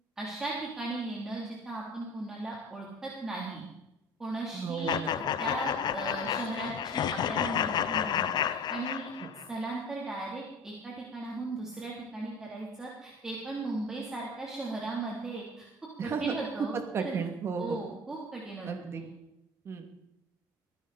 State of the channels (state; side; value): normal; both; correlation 0.37